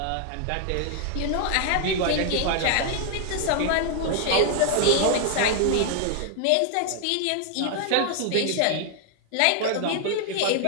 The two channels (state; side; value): different; both; correlation 0.00